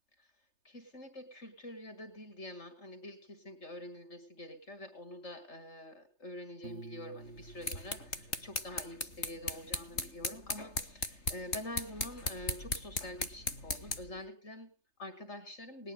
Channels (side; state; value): right; late; 3.3 ms